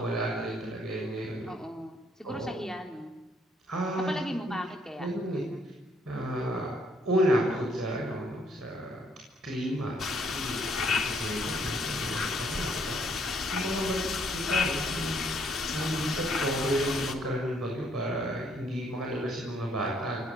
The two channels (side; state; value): both; normal; correlation 0.67